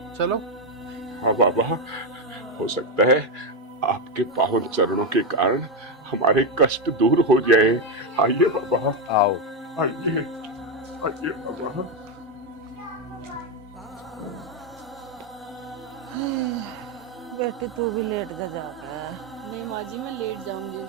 चलो। हाँ बाबा, हो सकता है आपके पावन चरणों के कारण हमारे कष्ट दूर हो जाए। आइए बाबा, आओ। आइए, आइए बाबा। बेटी तू भी लेट जा जाकर। नहीं माँ जी, मैं लेट जाऊंगी।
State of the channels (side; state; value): both; normal; correlation 0.07